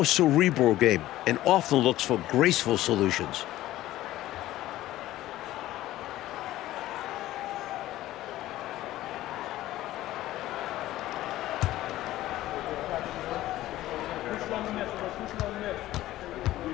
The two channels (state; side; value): quieter; right; 15.2 dB